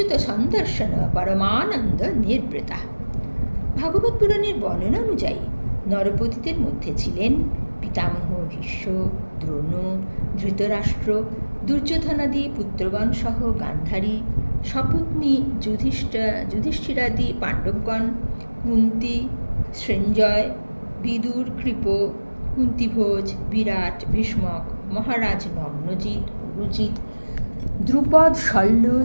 সন্দর্শন পরমানন্দ নির্বৃতা। ভাগবত পুরাণের বর্ণনা অনুযায়ী নরপতিদের মধ্যে ছিলেন পিতামহ ভীষ্ম, দ্রোণ, ধৃতরাষ্ট্র, দুর্যোধনাদি পুত্রগণ সহ গান্ধারী, সপত্নী যুধিষ্ঠিরাদি পাণ্ডবগণ, কুন্তী, সঞ্জয়, বিদুর, কৃপ, কুন্তিভোজ, বিরাট, ভীষ্মক, মহারাজ নগ্নজিৎ, পুরুজিৎ, দ্রুপদ, শল্য,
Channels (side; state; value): both; inverted; correlation -1.00